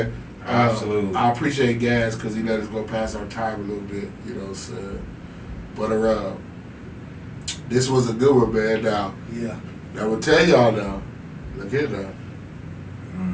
Absolutely. I appreciate Gaz because he let us go past our time a little bit, you know what I'm saying? But this was a good one, man. Now, Yeah. I will tell y'all now. Look here now.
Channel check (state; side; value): identical; both; correlation 1.00